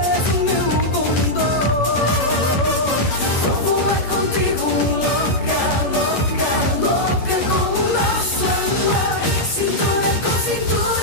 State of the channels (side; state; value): right; late; 11 ms